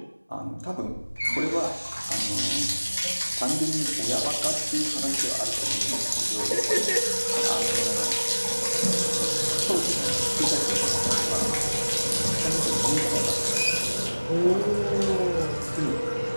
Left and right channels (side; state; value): both; inverted; correlation -1.00